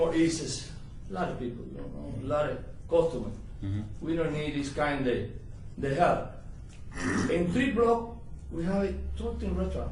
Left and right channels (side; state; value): both; identical; correlation 1.00